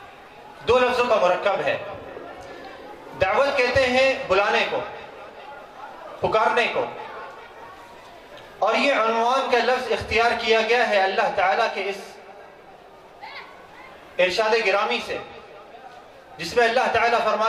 دو لفظوں کا مرکب ہے۔ دعوت کہتے ہیں بلانے کو، پکارنے کو، اور یہ عنوان کا لفظ اختیار کیا گیا ہے اللہ تعالیٰ کے اس ارشاد گرامی سے، جس میں اللہ تعالیٰ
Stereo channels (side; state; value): both; identical; correlation 1.00